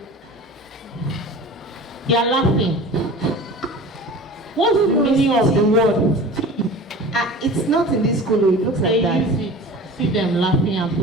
You're laughing. What's the meaning of the word? It's not in this school, it looks like that. They use it. See them laughing and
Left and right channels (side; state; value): both; normal; correlation 0.38